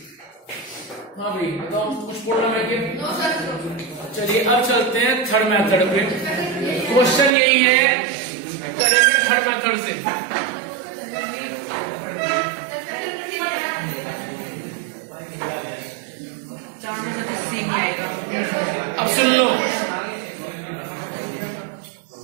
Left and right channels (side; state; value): left; drops out; at 7.4 s